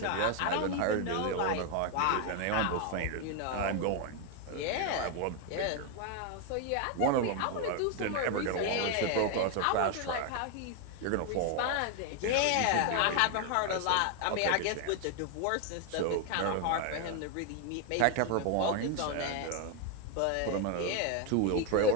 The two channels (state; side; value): different; both; correlation 0.01